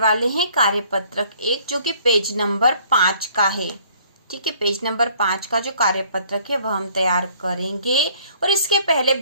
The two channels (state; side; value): inverted; both; correlation -0.58